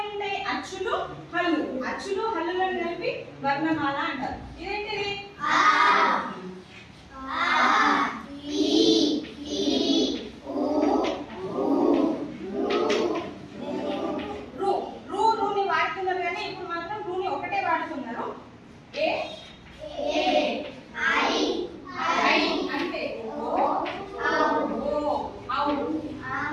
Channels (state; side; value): identical; both; correlation 1.00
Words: అచ్చులు, హల్లు. అచ్చులు, హల్లులను కలిపి వర్ణమాల అంటారు. ఇదేంటిది? రూని వాడుతున్నారు కానీ ఇప్పుడు మాత్రం రూని ఒకటే వాడుతున్నారు. ఏ అంటే